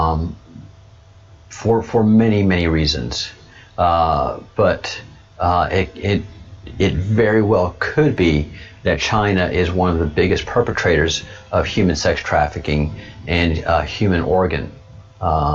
for many reasons. But it very well could be that China is one of the biggest perpetrators of human sex trafficking and human organ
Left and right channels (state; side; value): identical; both; correlation 1.00